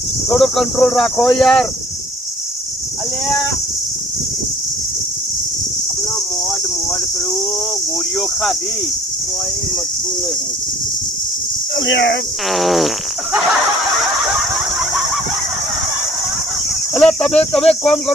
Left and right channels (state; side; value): normal; both; correlation 0.55